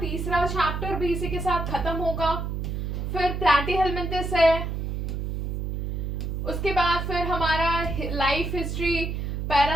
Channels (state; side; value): noise; right; hum, 3 dB below the sound